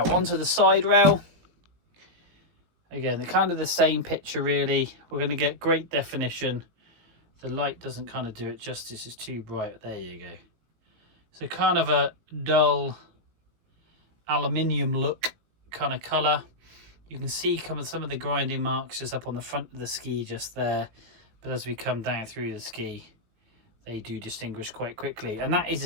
onto the side rail. Again, they're kind of the same picture really. We're going to get great definition. The light doesn't kind of do it justice, it's too bright. There you go. So kind of a dull aluminium look kind of colour. You can see some of the grinding marks just up on the front of the ski just there. But as we come down through the ski, they do distinguish quite quickly. And that is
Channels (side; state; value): left; late; 18 ms